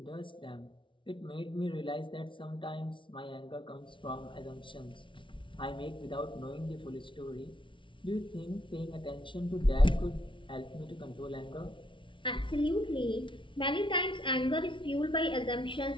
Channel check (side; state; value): right; late; 0.24 ms